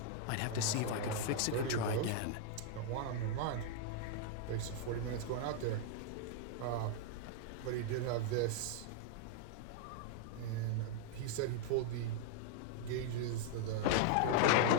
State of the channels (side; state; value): both; different; correlation -0.01